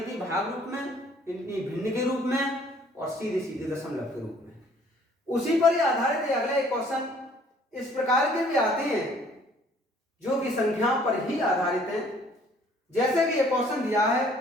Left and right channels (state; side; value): normal; both; correlation 0.58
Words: थी, भाग रूप में, इतनी भिन्न के रूप में और सीधे सीधे दशमलव के रूप में। उसी पर ही आधारित है अगला एक क्वेश्चन। इस प्रकार के भी आते हैं जो कि संख्याओं पर ही आधारित हैं। जैसे कि ये क्वेश्चन दिया है,